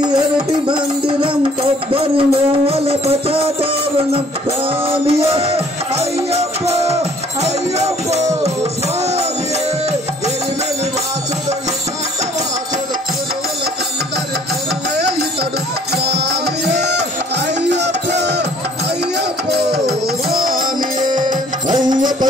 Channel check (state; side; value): normal; both; correlation 0.58